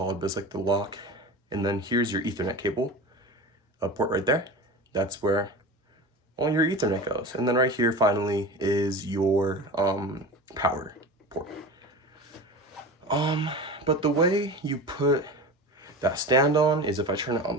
but it's like the lock. And then here's your Ethernet cable, a port right there. That's where all your Ethernet goes. And then right here, finally, is your power port. But the way you put that stand on is if I turn it on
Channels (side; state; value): both; normal; correlation 0.31